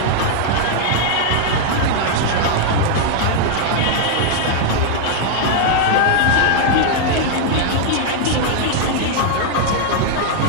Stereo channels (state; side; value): different; both; correlation -0.01